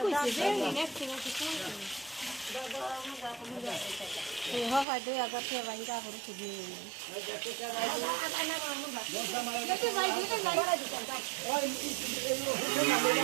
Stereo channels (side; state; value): left; drops out; at 4.9 s